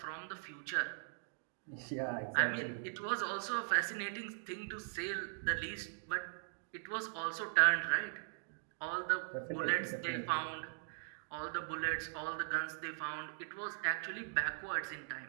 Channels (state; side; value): silent; left; digital silence